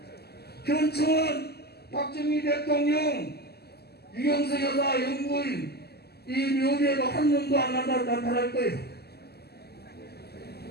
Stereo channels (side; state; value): right; late; 0.46 ms